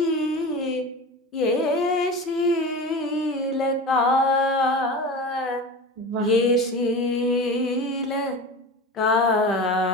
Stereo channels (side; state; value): both; normal; correlation 0.30